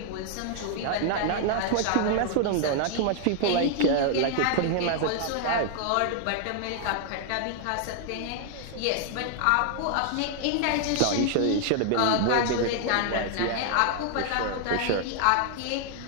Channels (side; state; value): both; different; correlation 0.00